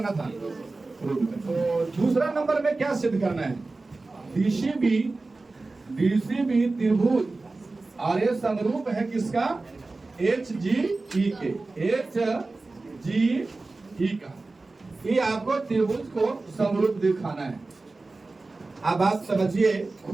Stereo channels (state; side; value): quieter; left; 3.4 dB